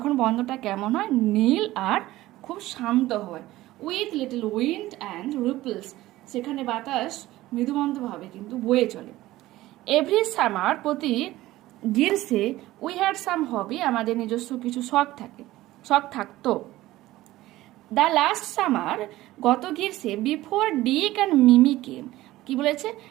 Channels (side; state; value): left; quieter; 16.6 dB